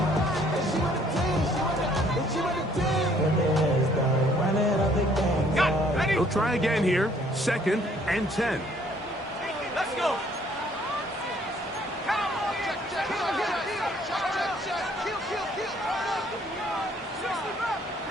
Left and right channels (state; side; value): normal; both; correlation 0.62